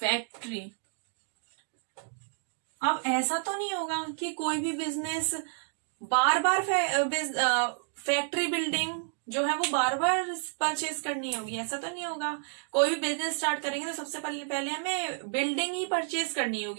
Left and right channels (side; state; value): left; silent; digital silence